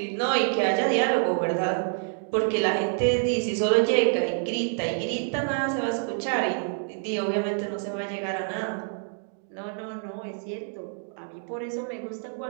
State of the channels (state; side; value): silent; left; 60 dB below the other